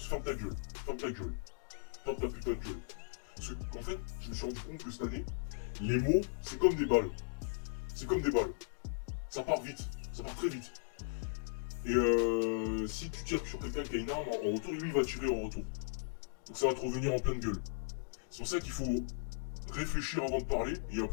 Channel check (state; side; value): silent; right; digital silence